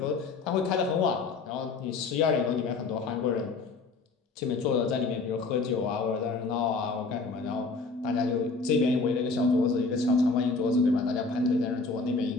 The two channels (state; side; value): quieter; right; 4.0 dB